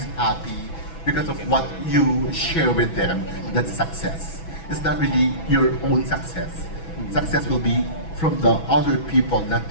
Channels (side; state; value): right; late; 6.1 ms